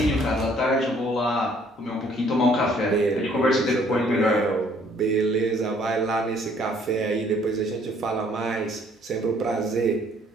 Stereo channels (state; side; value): normal; both; correlation 0.61